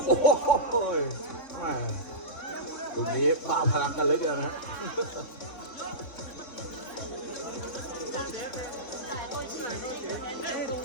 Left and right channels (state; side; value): late; right; 3.8 ms